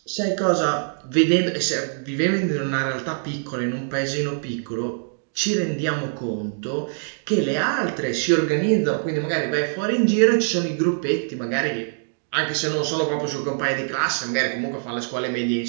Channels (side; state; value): left; silent; digital silence